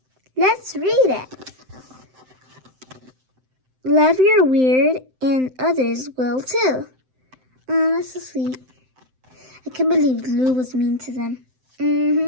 Let's read it. Love your weird and others will too. Oh, that's so sweet. I can't believe Lou was mean to them.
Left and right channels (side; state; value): left; late; 7.8 ms